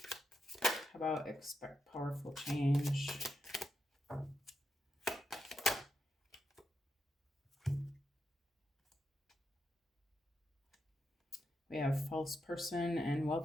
How about expect powerful change? We have false person and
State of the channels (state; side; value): normal; both; correlation 0.85